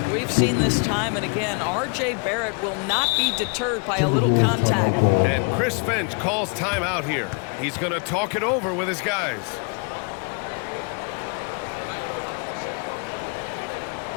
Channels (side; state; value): right; quieter; 36.0 dB